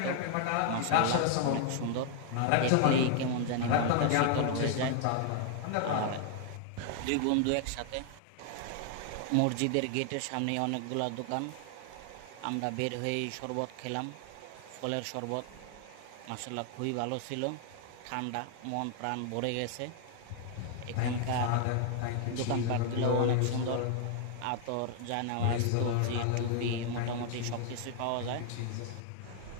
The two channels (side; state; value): both; different; correlation 0.00